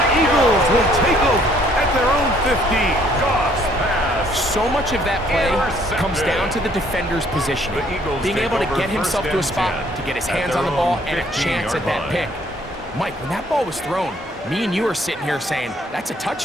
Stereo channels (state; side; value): normal; both; correlation 0.63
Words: Eagles will take over at their own 15. So much of that play comes down to the defender's positioning. Being able to get himself to a spot, to get his hands on the ball, and a chance at that pick. Mike, when that ball was thrown, me and you are sitting here saying, that's a